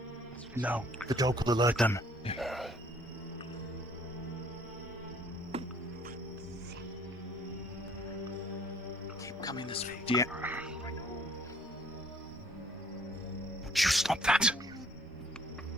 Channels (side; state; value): both; normal; correlation 0.60